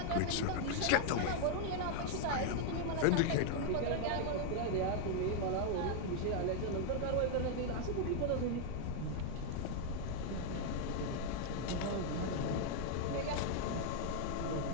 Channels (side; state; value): both; different; correlation 0.00